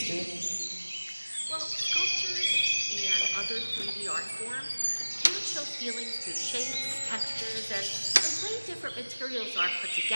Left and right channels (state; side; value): inverted; both; correlation -1.00